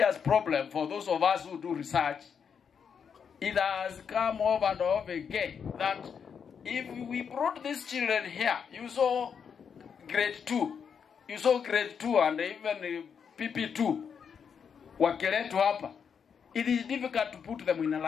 problem for those of us who do research. It has come over and over again that if we brought these children here, you saw grade 2, and even PP2, Wongeleku hapa, it is difficult to put them in a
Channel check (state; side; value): quieter; right; 6.9 dB